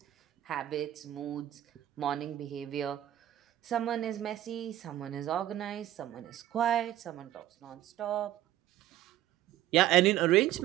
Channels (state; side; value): quieter; left; 13.3 dB